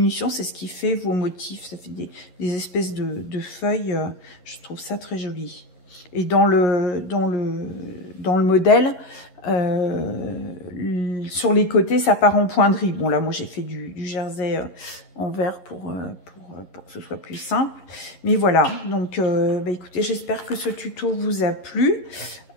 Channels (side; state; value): right; late; 11 ms